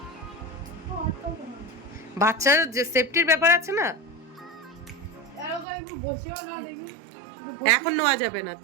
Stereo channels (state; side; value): drops out; left; at 5.7 s